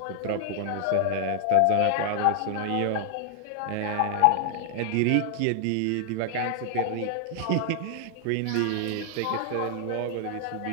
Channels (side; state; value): both; different; correlation -0.01